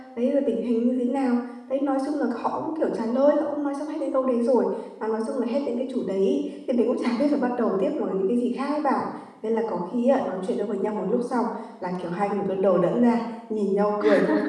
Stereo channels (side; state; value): both; identical; correlation 1.00